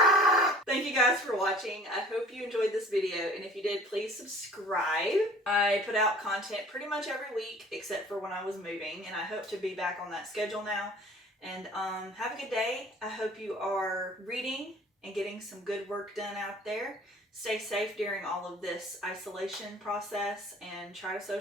Thank you guys for watching. I hope you enjoyed this video, and if you did, please subscribe. I put out content pretty much every week except for when I was moving, and I hope to be back on that schedule now. And have a good day. I hope you are reading and getting some good work done out there. Stay safe during all of this isolation process and try to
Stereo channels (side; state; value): both; normal; correlation 0.48